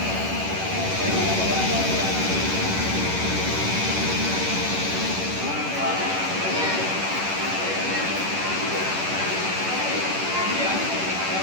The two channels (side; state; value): left; late; 11 ms